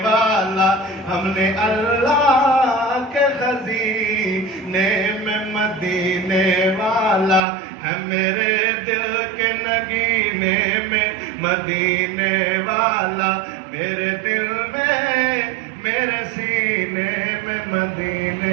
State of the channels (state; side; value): drops out; left; at 7.4 s